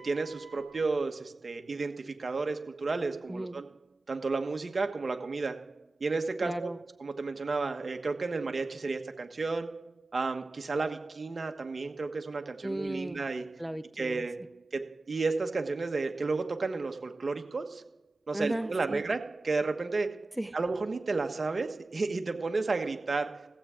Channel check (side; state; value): left; quieter; 3.2 dB